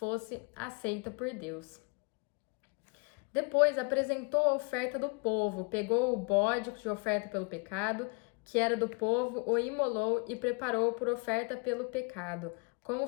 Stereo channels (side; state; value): right; quieter; 32.9 dB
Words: aceita por Deus. Depois apresentou a oferta do povo, pegou o bode de oferta pelo pecado, que era do povo, o imolou e preparou por oferta pelo pecado, como